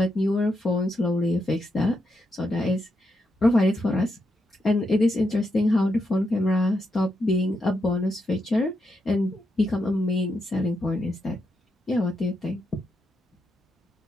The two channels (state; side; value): normal; both; correlation 0.83